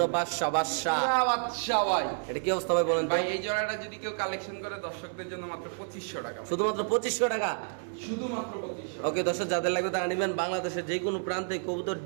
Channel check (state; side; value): silent; left; 58 dB below the other